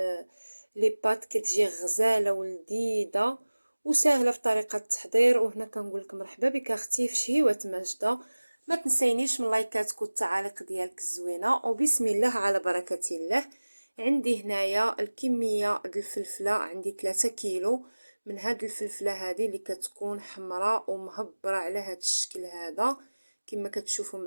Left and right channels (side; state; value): both; inverted; correlation -1.00